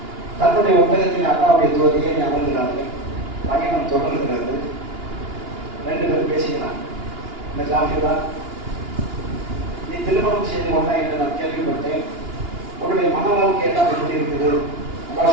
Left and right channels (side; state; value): left; late; 2.9 ms